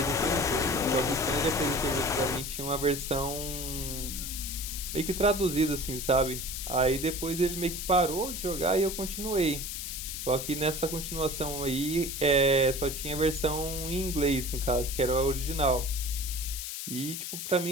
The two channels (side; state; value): left; noise; hiss, 6 dB below the sound